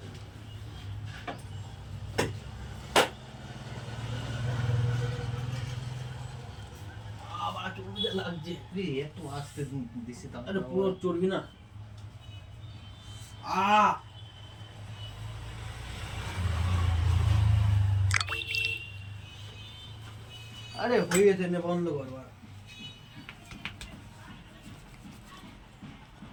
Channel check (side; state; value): both; identical; correlation 1.00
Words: লাগছে একটু আসতে দিছি, তাহলে পুরো চর্বি না। আরে হয়ে গেছে, বন্ধ করবার।